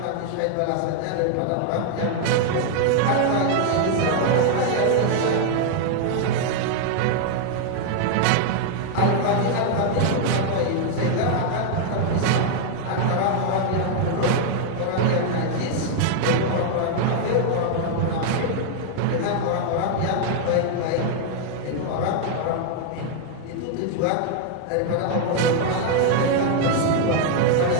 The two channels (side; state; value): both; different; correlation 0.00